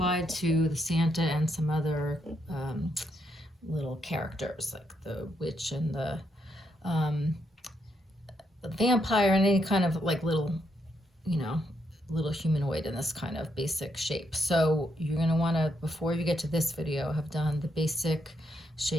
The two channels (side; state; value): both; normal; correlation 0.78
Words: to the Santa and some other little characters like the witch and um, the vampire and any kind of like little, you know, little humanoid in this kind of basic shape. So you're going to want to, before you get to this video, have done the basic